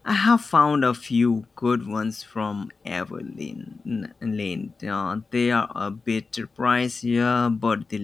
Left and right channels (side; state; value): right; quieter; 4.3 dB